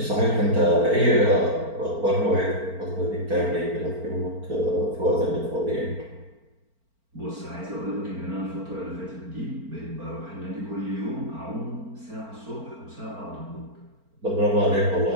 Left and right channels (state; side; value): late; left; 4.4 ms